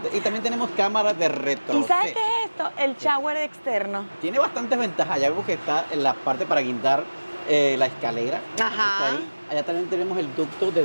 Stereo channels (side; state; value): both; inverted; correlation -1.00